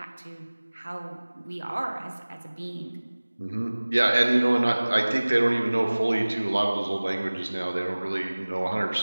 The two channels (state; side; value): inverted; both; correlation -1.00